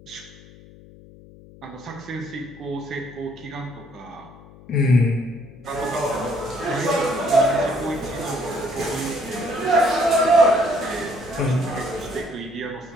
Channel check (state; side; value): noise; left; hum, 21 dB below the sound